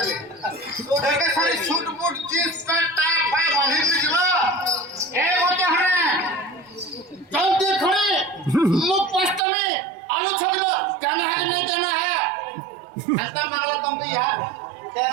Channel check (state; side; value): drops out; left; at 9.4 s